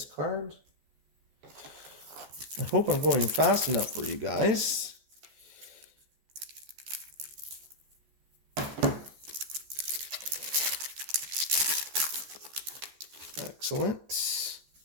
card. I hope I'm going fast enough for you guys. Excellent.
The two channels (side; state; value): left; late; 14 ms